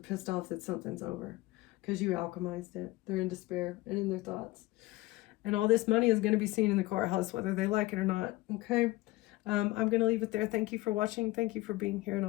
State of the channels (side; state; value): right; quieter; 19.6 dB